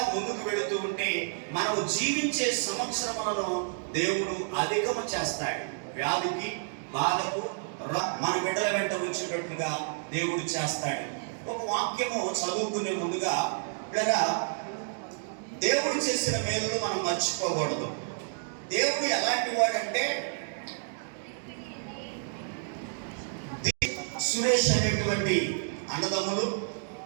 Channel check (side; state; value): left; silent; digital silence